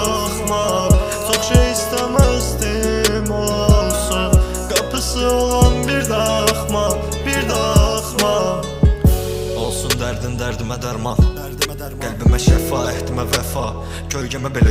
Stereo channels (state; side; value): identical; both; correlation 1.00